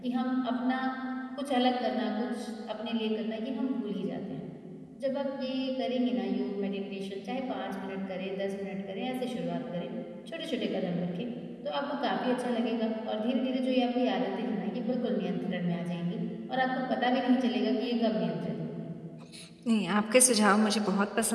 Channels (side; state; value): both; identical; correlation 1.00